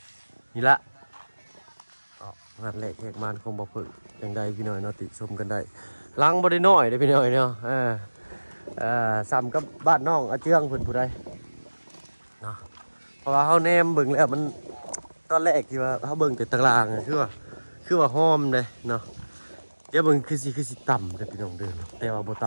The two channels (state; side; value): inverted; both; correlation -1.00